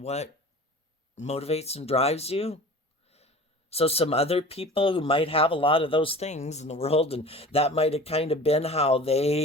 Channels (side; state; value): both; normal; correlation 0.40